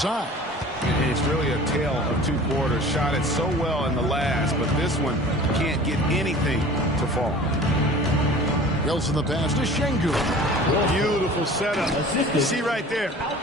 It's really a tale of 2 quarters. Shot it so well in the last, but this one can't get anything to fall. Wilson the pass to Şengün. Beautiful setup. You see right there,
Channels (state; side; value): normal; both; correlation 0.43